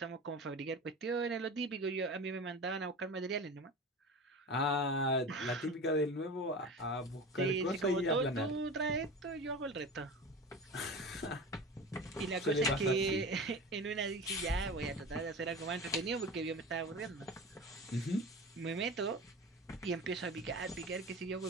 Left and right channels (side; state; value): both; normal; correlation 0.32